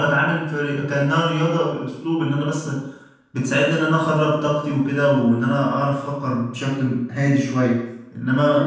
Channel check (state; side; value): identical; both; correlation 1.00